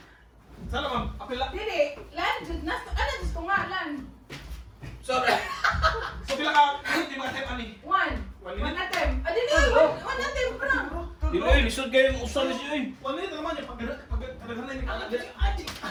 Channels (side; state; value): both; identical; correlation 1.00